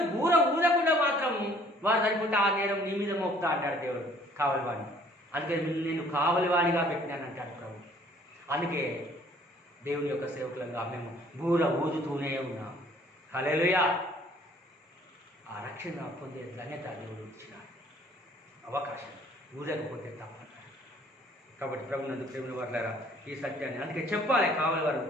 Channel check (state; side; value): normal; both; correlation 0.57